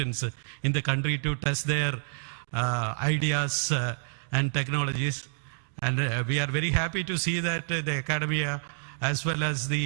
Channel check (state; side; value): silent; left; digital silence